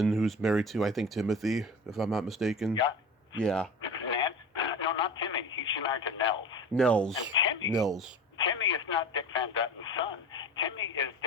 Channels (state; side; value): normal; both; correlation 0.34